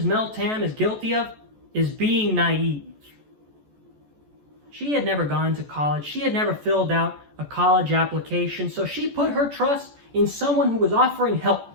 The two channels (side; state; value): left; late; 14 ms